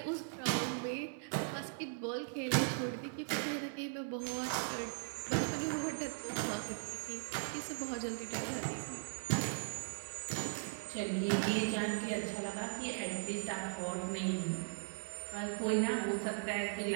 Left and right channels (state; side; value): silent; left; 52 dB below the other